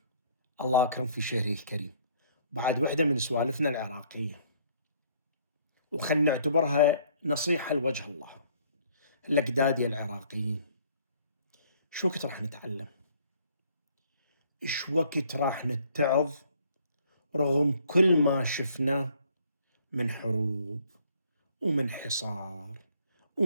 الله أكرم في شهره الكريم. بعد وحدة من سوالفنا العراقية، وخلنا نعتبرها نصيحة لوجه الله. الأجداد العراقيين، شو وقت راح نتعلم؟ شو وقت راح نتعظ رغم كل ما شفناه من حروب ومن حصار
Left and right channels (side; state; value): both; inverted; correlation -0.62